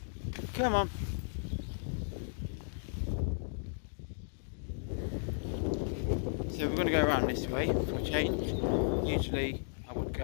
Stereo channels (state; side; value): silent; right; digital silence